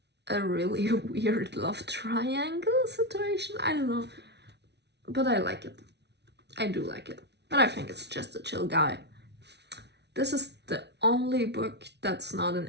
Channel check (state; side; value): late; left; 0.50 ms